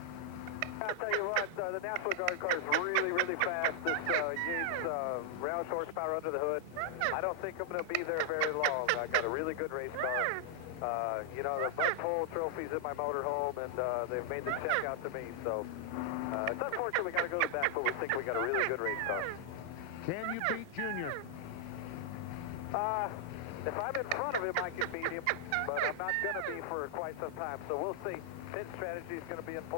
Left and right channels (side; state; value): both; different; correlation -0.01